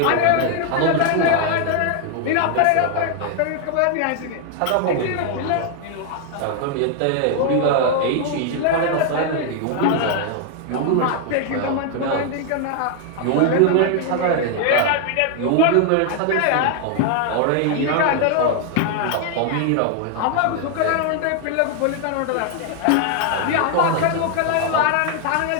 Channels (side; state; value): both; different; correlation 0.00